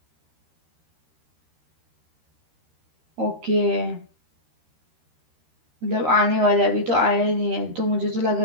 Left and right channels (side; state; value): left; late; 13 ms